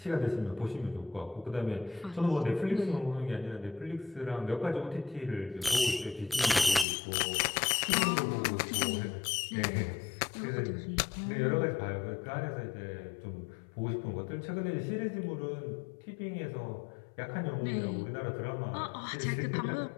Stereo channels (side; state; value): right; drops out; at 6.9 s